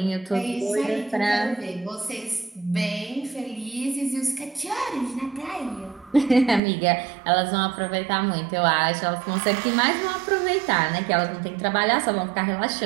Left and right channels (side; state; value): left; drops out; at 6.6 s